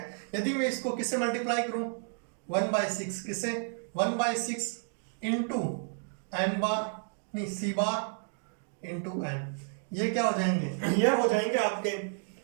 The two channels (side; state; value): left; silent; 57 dB below the other